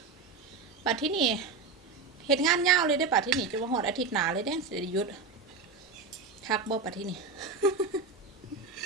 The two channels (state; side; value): quieter; left; 4.5 dB